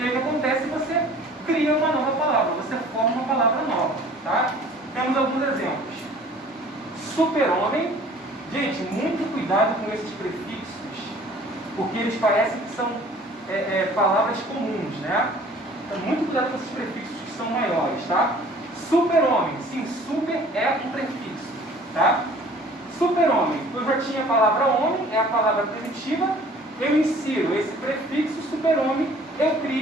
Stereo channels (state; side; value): normal; both; correlation 0.50